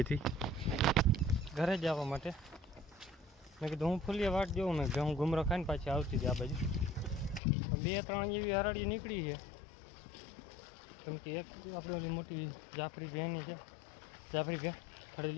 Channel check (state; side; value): drops out; right; at 7.4 s